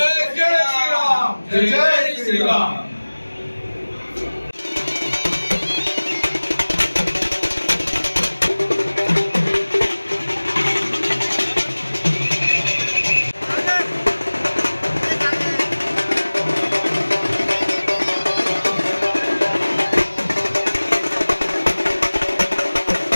जय श्रीराम, जय जय श्रीराम।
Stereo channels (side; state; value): both; inverted; correlation -1.00